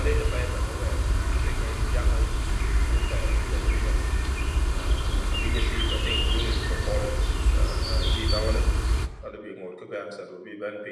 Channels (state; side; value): identical; both; correlation 1.00